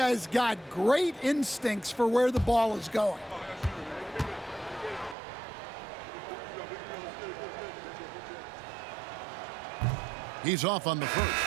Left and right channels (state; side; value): drops out; left; at 5.2 s